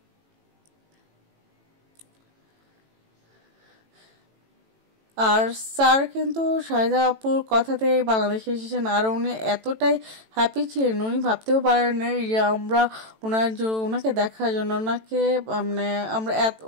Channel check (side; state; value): left; late; 18 ms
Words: আর স্যার কিন্তু শাহিদা আপুর কথাতে বাংলাদেশে এসেছেন, আর উনি এতটাই হ্যাপি ছিলেন, উনি ভাবতেও পারেন না যে আমরা ওনাকে দেখার জন্য ওনাকে মানে আমরা এত